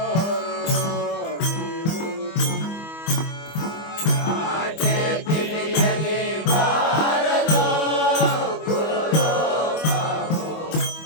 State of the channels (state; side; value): late; right; 25 ms